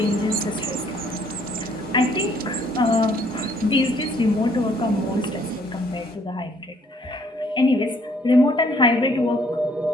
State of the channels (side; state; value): both; normal; correlation 0.63